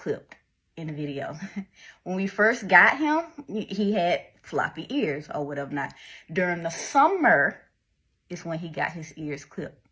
in the video. When we first got him, he had floppy ears or whatever not. During the summer is when he got his ears clipped.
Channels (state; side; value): identical; both; correlation 1.00